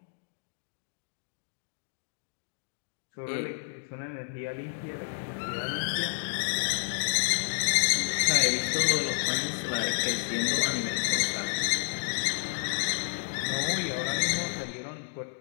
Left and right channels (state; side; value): silent; right; digital silence